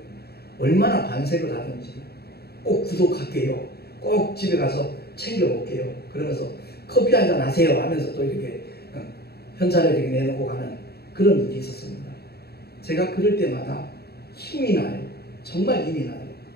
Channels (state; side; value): late; right; 0.46 ms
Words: 얼마나 반색을 하든지 꼭 구독할게요. 꼭 집에 가서 챙겨올게요. 그러면서 커피 한잔 하세요 하면서 또 이렇게 현찰을 이렇게 내놓고 가는 그런 일이 있었습니다. 제가 그럴 때마다 힘이 나요. 정말 힘이 나요.